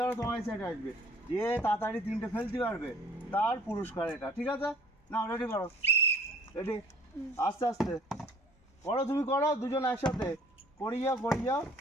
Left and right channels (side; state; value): both; normal; correlation 0.53